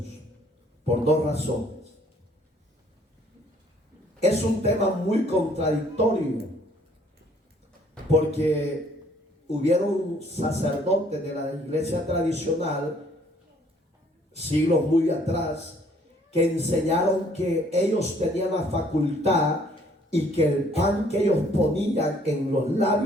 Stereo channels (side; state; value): both; normal; correlation 0.62